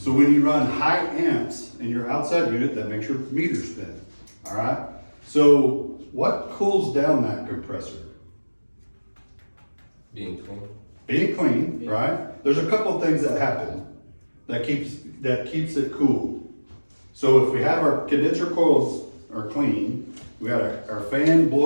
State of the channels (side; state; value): both; inverted; correlation -1.00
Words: when you run high amps in your outside unit, that makes your meter spin, all right? So what cools down that compressor? Being clean. Being clean, right? There's a couple of things that happen that keeps it cool. So if we have our condenser coils are clean, we got our fan